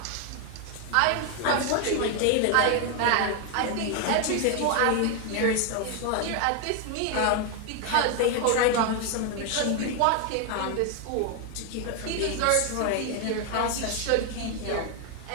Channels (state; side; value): different; both; correlation 0.01